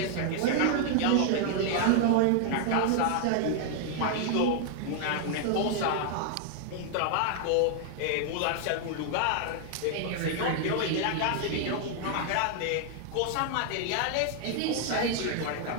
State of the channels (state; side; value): different; both; correlation 0.00